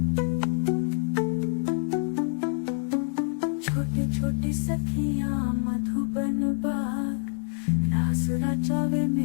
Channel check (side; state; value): right; silent; digital silence